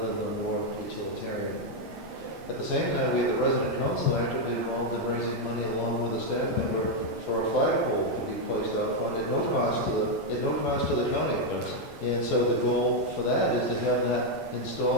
than the more utilitarian. At the same time, we have the resident council actively involved in raising money along with a staff member for a flagpole to be placed out front at no cost to the county. And so the goal for that is to have that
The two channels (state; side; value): normal; both; correlation 0.01